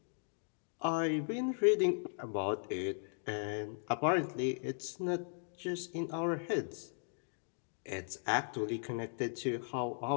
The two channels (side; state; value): right; silent; digital silence